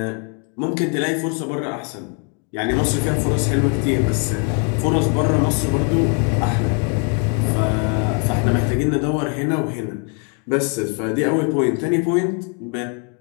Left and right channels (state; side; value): quieter; right; 34.4 dB